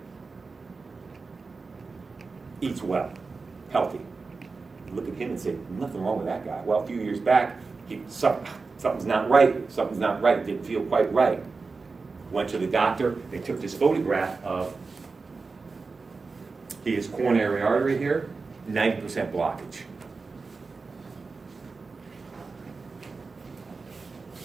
Eats well, healthy. You look at him and say, nothing wrong with that guy. Well, a few years back, something's not right. Something's not right. It didn't feel quite right. Went to the doctor. They took this photograph of his coronary artery here, 90% blockage.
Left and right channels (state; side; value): quieter; left; 4.2 dB